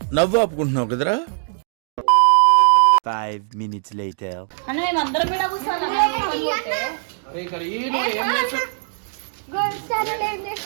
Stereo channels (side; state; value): left; silent; digital silence